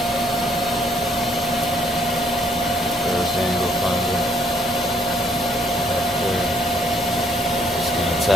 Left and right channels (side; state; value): both; normal; correlation 0.67